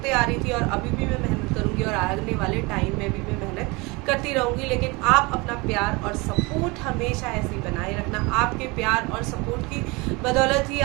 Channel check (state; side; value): quieter; left; 25.8 dB